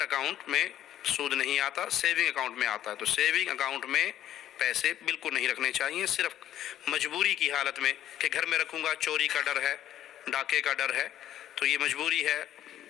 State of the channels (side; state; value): right; quieter; 11.8 dB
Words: اکاؤنٹ میں سود نہیں آتا، سیونگ اکاؤنٹ میں آتا ہے۔ تو سیونگ اکاؤنٹ میں پیسے بالکل نہیں رکھنے چاہیے، صرف مجبوری کی حالت میں کہ گھر میں رکھوں گا، چوری کا ڈر ہے، ڈاکے کا ڈر ہے، تو یہ مجبوری ہے،